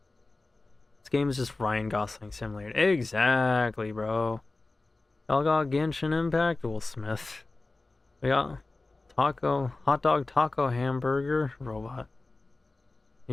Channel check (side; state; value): right; quieter; 3.3 dB